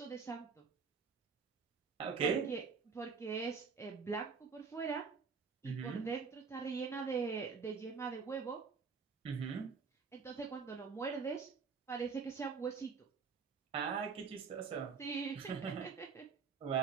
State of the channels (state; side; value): quieter; left; 5.5 dB